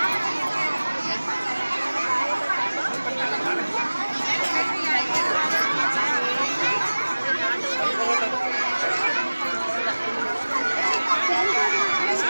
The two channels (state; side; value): inverted; both; correlation -1.00